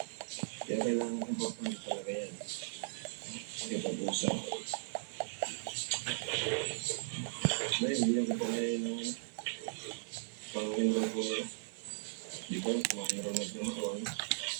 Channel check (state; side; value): silent; left; digital silence